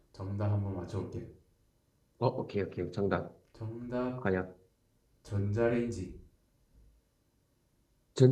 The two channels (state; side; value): identical; both; correlation 1.00